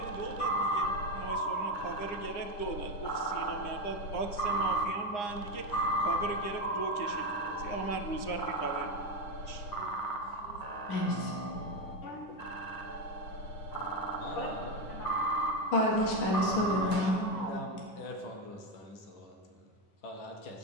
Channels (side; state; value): right; late; 9.7 ms